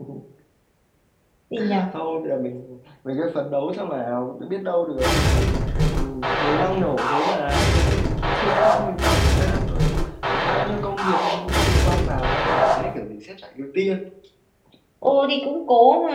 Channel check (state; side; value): identical; both; correlation 1.00